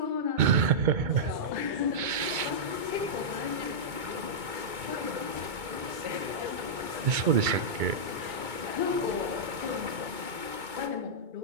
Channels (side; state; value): left; late; 2.2 ms